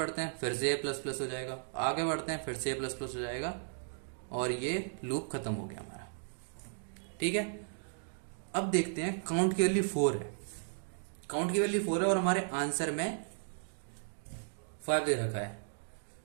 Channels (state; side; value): silent; left; digital silence